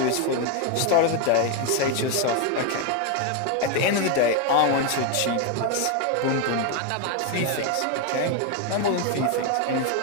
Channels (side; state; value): both; different; correlation 0.01